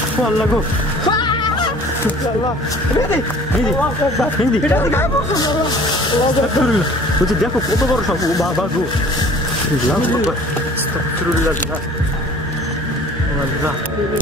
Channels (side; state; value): both; normal; correlation 0.49